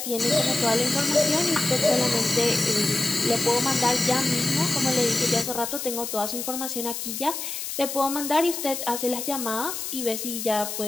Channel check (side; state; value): left; noise; hiss, 5 dB below the sound